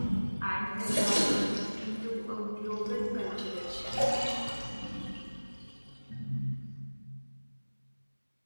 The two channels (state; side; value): inverted; both; correlation -1.00